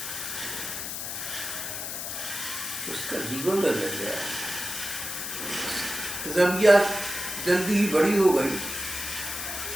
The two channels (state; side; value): noise; left; hiss, 5 dB below the sound